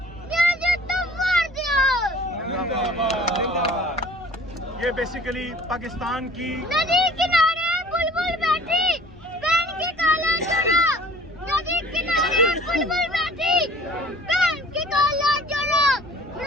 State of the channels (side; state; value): both; normal; correlation 0.50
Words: یہ بیسیکلی پاکستان کی